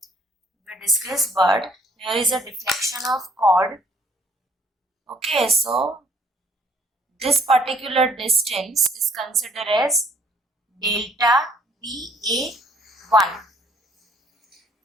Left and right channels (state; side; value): normal; both; correlation 0.61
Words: We discussed, but here is a deflection of chord. Okay, so this particular distance is considered as delta BA1,